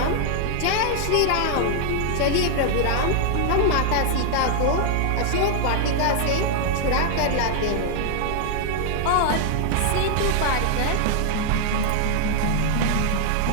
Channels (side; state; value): both; different; correlation 0.00